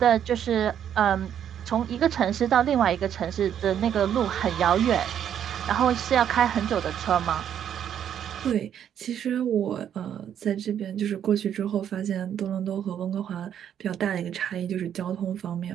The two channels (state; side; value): quieter; left; 9.5 dB